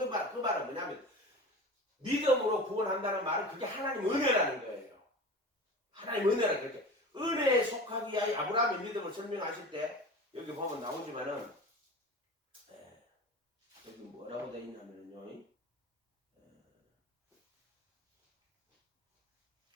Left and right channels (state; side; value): normal; both; correlation 0.34